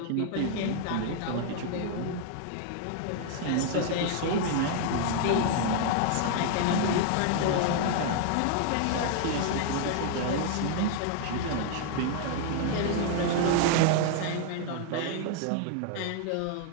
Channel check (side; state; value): both; different; correlation 0.00